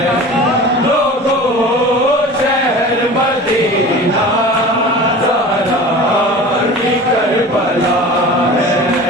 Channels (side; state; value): both; normal; correlation 0.37